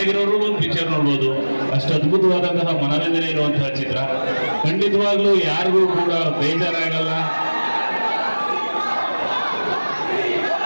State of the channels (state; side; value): inverted; both; correlation -1.00